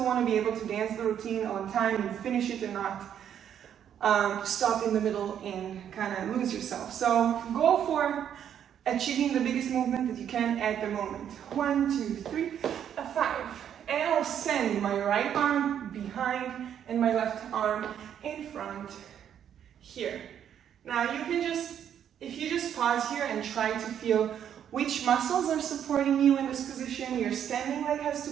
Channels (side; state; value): left; quieter; 9.3 dB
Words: want to be able to dance the routine on time and finish it and not stop in the middle and kind of lose yourself. So go for achieving the biggest movement that you can at the moment. 1, 2, 3, a 5. And I'll send my right arm behind and my left arm in front here. Now you can just, if you just pause here and try to feel which muscles are supporting you in this position. Your standing leg has